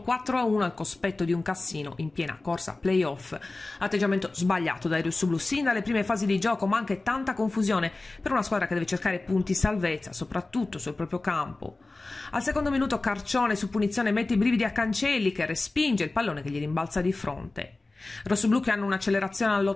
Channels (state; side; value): quieter; right; 3.2 dB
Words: 4-1 al cospetto di un Cassino in piena corsa playoff. Atteggiamento sbagliato dai rossoblù sin dalle prime fasi di gioco, ma anche tanta confusione per una squadra che deve cercare punti salvezza, soprattutto sul proprio campo. Al secondo minuto Carcione su punizione mette i brividi a Cancelli, che respinge il pallone che gli rimbalza di fronte. Rossoblù che hanno un'accelerazione